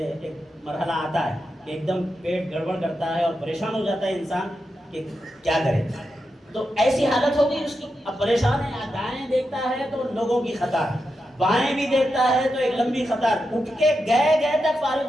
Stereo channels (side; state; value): both; normal; correlation 0.87